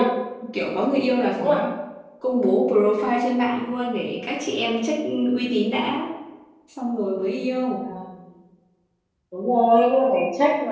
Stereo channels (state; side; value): identical; both; correlation 1.00